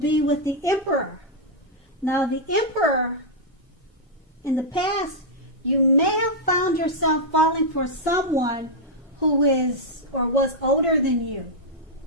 with the Emperor. Now, the Emperor, in the past, you may have found yourself falling for someone who is or was older than you.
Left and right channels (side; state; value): both; normal; correlation -0.05